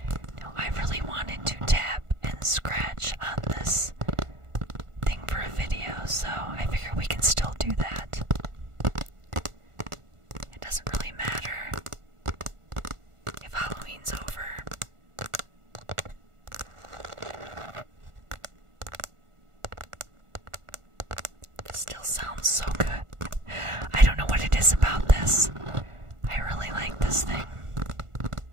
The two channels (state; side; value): late; left; 1.4 ms